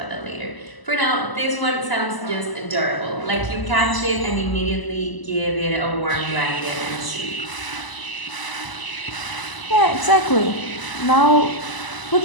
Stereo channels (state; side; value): late; right; 1.0 ms